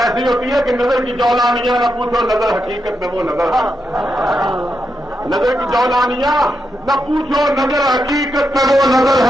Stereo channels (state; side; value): normal; both; correlation 0.85